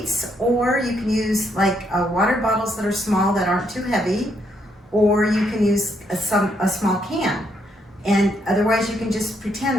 or you can use like water bottles that are small that aren't too heavy, or you can use a small can. And otherwise you can just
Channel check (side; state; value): both; normal; correlation 0.74